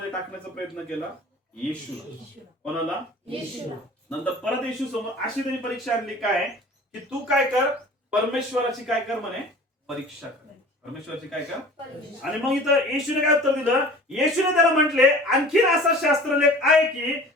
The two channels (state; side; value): normal; both; correlation 0.43